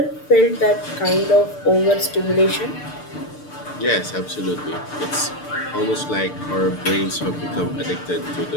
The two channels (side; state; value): right; late; 6.7 ms